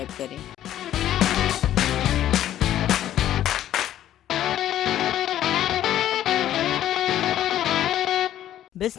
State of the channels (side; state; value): right; quieter; 12.0 dB